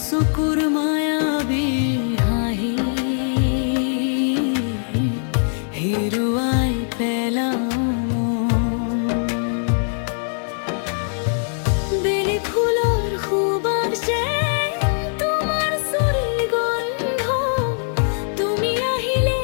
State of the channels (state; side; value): silent; right; digital silence